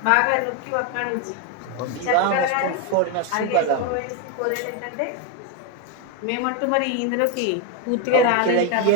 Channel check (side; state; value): both; different; correlation 0.02